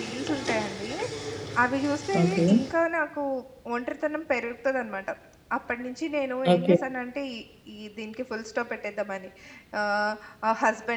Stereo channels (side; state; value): both; identical; correlation 1.00